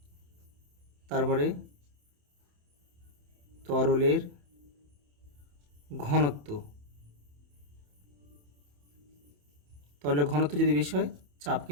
তারপরে তরলের ঘনত্ব। তরলের ঘনত্ব যদি বেশি হয়, চাপ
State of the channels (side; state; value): left; late; 28 ms